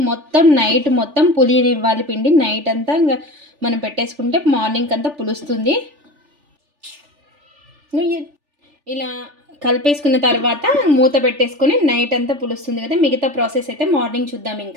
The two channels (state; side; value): late; left; 3.4 ms